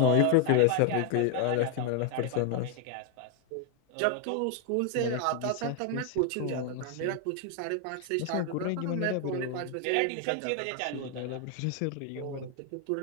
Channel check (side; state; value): both; different; correlation 0.00